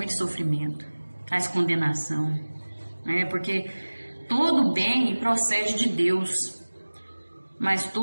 sofrimento, traz condenação, né? Porque todo bem procede de Deus, mas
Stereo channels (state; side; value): inverted; both; correlation -1.00